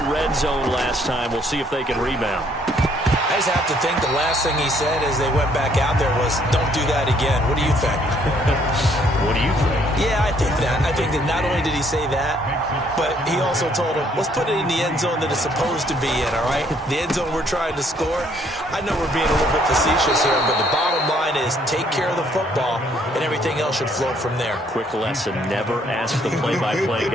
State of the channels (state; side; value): normal; both; correlation 0.65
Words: red zone last time. We'll see if they can rebound. I just have to think the last thing he said as they went back out there was, don't do that again. What do you think? What do you think? Yeah, I think that. I think that not only did he say that, but he also told him, let's put it in the end zone that it's supposed to be in, all right? The end zone we're trying to score. I know we're being a little bit facetious here, but the bottom line is take care of the football, and everything else should flow from there. Quick lesson, never ask the play-by-play